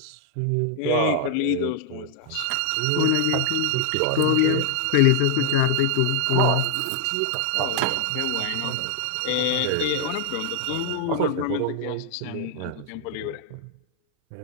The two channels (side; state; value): both; different; correlation -0.01